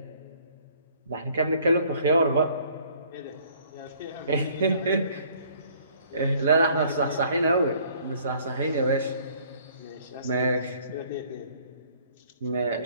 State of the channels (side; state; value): both; inverted; correlation -0.59